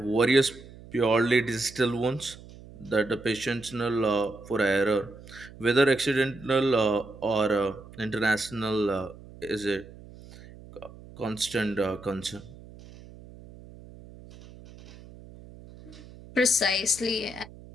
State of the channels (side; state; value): right; noise; hum, 19 dB below the sound